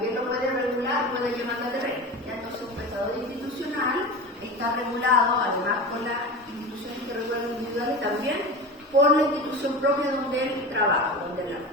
lo puede regular, puede llevar la terreno. Entonces un prestador institucional está regulado, además por las instituciones que regulan individuales, también por la institución propia donde él trabaja, donde él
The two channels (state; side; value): normal; both; correlation 0.29